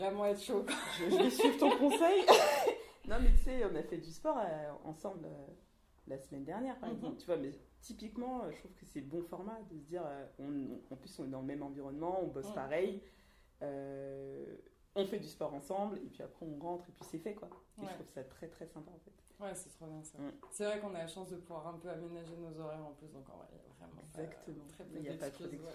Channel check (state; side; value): identical; both; correlation 1.00